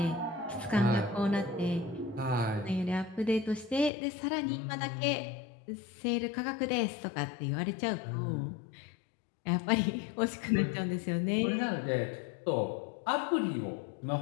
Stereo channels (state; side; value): drops out; right; at 3.9 s